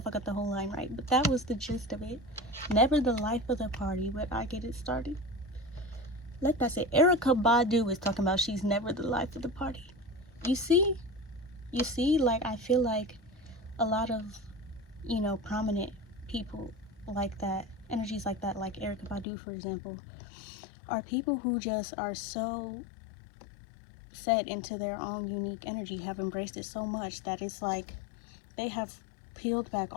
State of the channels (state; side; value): drops out; right; at 19.2 s